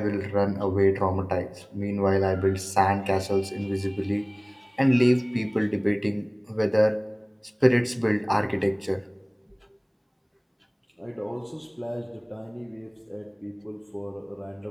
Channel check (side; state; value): both; identical; correlation 1.00